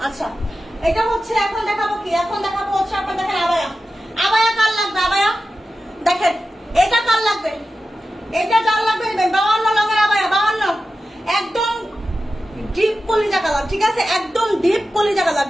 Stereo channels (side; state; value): both; normal; correlation 0.93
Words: আচ্ছা এটা হচ্ছে এখন দেখাবো কি, এখন দেখাবো হচ্ছে আপনার দেখেন আবায়া, আবায়া কার লাগবে, আবায়া দেখেন এটা কার লাগবে, এটা কার লাগবে 52 লঙের আবায়া, 52 একদম ডিপ কলিজা কালার, ঠিক আছে একদম ডিপ কলিজা কালার,